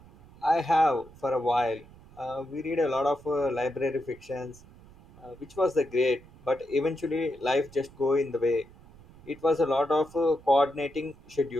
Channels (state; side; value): noise; right; rumble, 23 dB below the sound